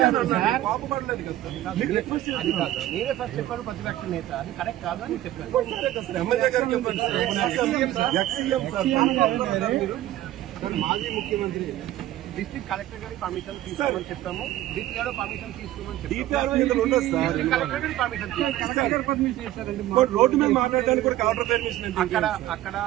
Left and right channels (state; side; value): quieter; left; 14.4 dB